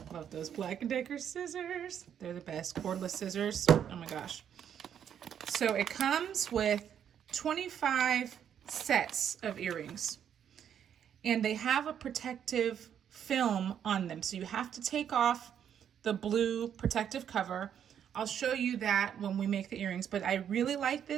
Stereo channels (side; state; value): left; quieter; 8.9 dB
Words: Love those Black & Decker scissors. They're the best, cordless scissors. Oh my gosh. So it comes with 25 sets of earrings. And they have a protective film on them. So you have to take off the blue protective cover. I'll show you that when we make the earrings. But I really like